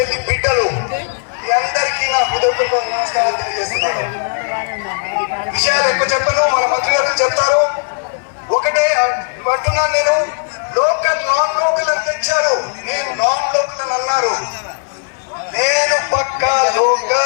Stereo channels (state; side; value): silent; right; 56 dB below the other